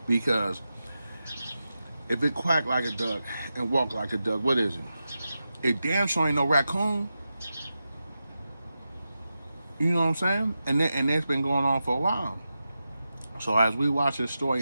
Because if it quack like a duck and walk like a duck, what is it? It damn sure ain't no raccoon. You know what I'm saying? And that's been going on for a while. So as we watch this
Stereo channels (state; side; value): inverted; both; correlation -0.90